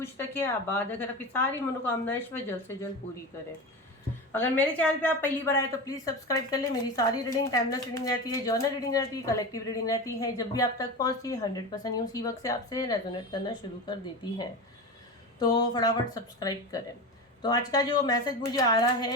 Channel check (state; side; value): normal; both; correlation 0.25